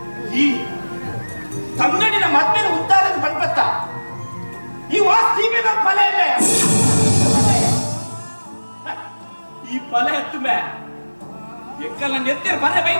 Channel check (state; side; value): inverted; both; correlation -1.00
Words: ಈ ತಂಗಡಿನ ಮದ್ಮೇಲೆ ಉದ್ದಾರದ ಬಂದ್ಬತ್ತ ಈ ವಾಸ್ತಿಗೆ ನಮ್ಮ ಫಲ ಇಲ್ಲ ಈ ಫಲ ಎತ್ತು ಮೇ ಎಕ್ಕಲ್ಲ ನೆತ್ತಿರ ಬರ